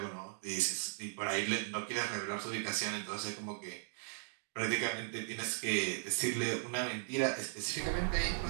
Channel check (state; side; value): silent; left; digital silence